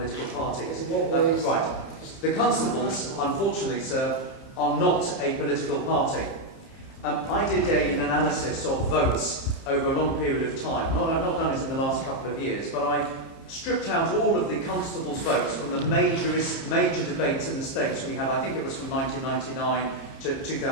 parties. Right. The Constables, unfortunately, sir, are not a political party. I did an analysis of votes over a long period of time. I've not done it in the last couple of years, but I stripped out all of the Constables' votes from the major debates in the States we had. I think it was from 1999 to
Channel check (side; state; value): right; late; 30 ms